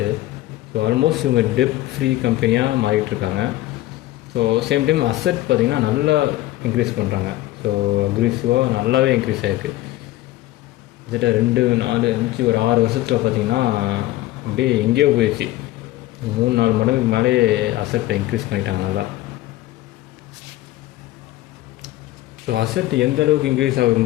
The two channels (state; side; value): quieter; right; 16.1 dB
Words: ஸோ ஆல்மோஸ்ட் இவங்க டெப்ட் ஃப்ரீ கம்பெனியாக மாறிட்டுருக்காங்க. ஸோ சேம் டைம் அசட் பார்த்திங்கன்னா நல்லா இன்க்ரீஸ் பண்ணுறாங்க. ஸோ அக்ரெசிவாக நல்லாவே இன்க்ரீஸ் ஆகிருக்கு. கிட்டத்தட்ட 2, 4, 5 ஒரு 6 வருஷத்தில் பார்த்திங்கன்னா அப்படியே எங்கேயோ போயிடுச்சு. 3-4 மடங்குக்கு மேலே அசட்டை இன்க்ரீஸ் பண்ணிட்டாங்க நல்லா. ஸோ அசட் எந்த அளவுக்கு இன்க்ரீஸ் ஆகுது